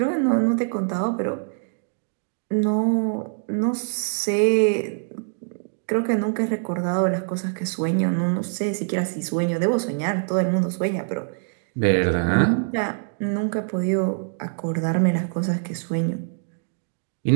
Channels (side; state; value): left; silent; digital silence